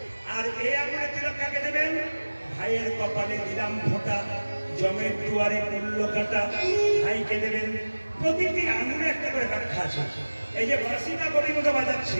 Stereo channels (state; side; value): inverted; both; correlation -1.00